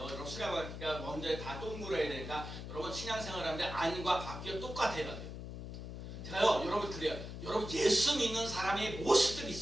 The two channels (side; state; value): left; noise; hum, 9 dB below the sound